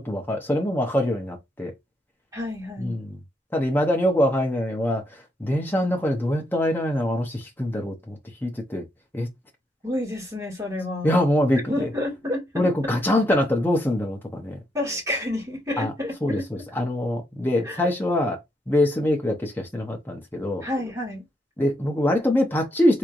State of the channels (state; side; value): normal; both; correlation 0.78